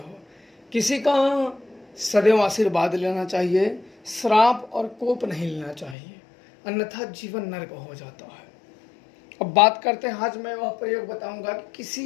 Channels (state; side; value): drops out; right; at 6.0 s